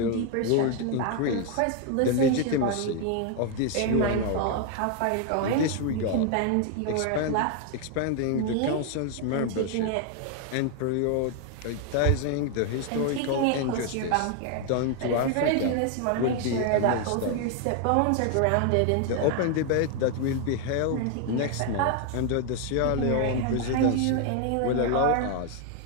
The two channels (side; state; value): both; different; correlation 0.00